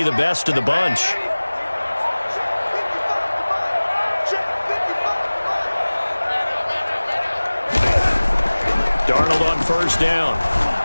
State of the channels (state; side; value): inverted; both; correlation -1.00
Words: the best of the bunch. Darnold on first down.